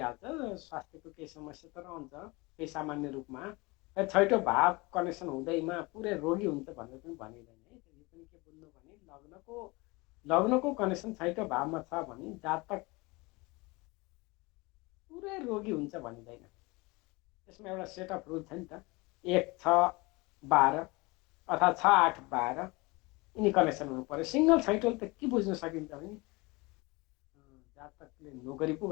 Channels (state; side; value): quieter; right; 24.8 dB